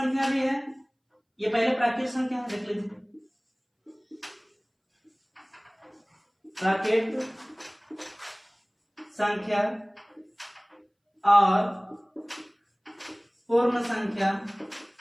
भी है, ये पहले प्राकृत संख्या है, देख लीजिए। प्राकृत संख्या और पूर्ण संख्या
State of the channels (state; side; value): identical; both; correlation 1.00